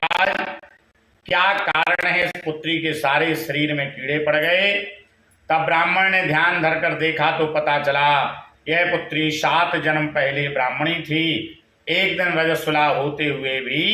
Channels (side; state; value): both; identical; correlation 1.00